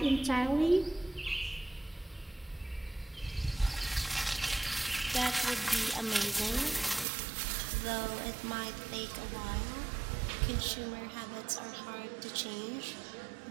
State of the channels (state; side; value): drops out; left; at 7.1 s